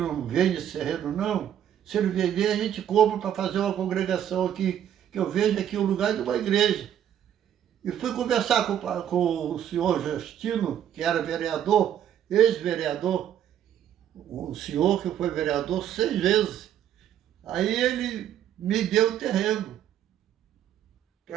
vende esse terreno, não? Se ele vender, a gente compra para fazer uma congregação aqui, que eu vejo aqui o lugar de uma igreja. E fui conversar com o senhor Justino, que era vereador, ex-vereador, um senhor que foi vereador 6 vezes. Aí ele me deu o terreno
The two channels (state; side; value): quieter; left; 10.2 dB